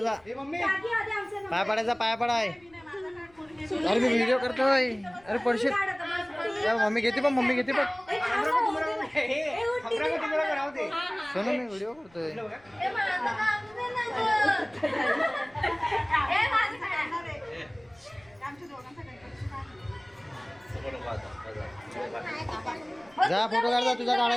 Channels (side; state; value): left; noise; rumble, 29 dB below the sound